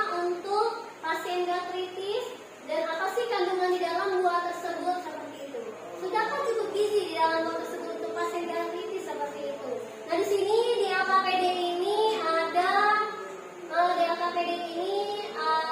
untuk pasien gastritis dan apa sih kandungan di dalam buah tersebut, seperti itu. Sudahkah cukup gizi di dalam buah tersebut untuk pasien gastritis, seperti itu. Nah, di sini di LKPD ini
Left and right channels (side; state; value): both; identical; correlation 1.00